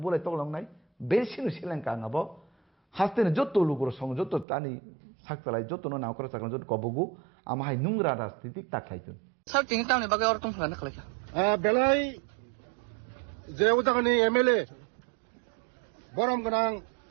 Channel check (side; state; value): left; drops out; at 4.5 s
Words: बोलाय तगलांनाय बेसिनो सेलेंका आंबो हास्तेने जत्तो लुगुर सं जत्तो तानि साकतालाय जत्तो नावकरा साकन जत्तो कबगु आमाहाय नुंग्रा राजनीतिक ताखायतुन স্যার তিনি টাউনে বাগে অর টংফানা খালাইখা বেলাই যে উদাহরণে এমএলএ বরম গোনাं